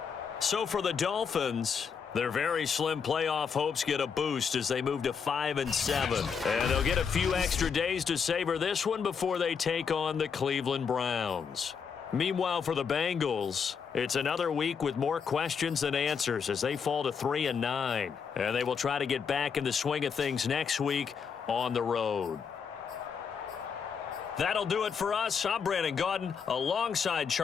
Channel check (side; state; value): right; quieter; 6.4 dB